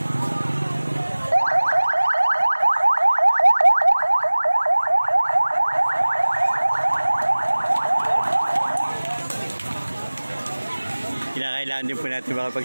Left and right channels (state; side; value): inverted; both; correlation -1.00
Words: Kinakailangan din po natin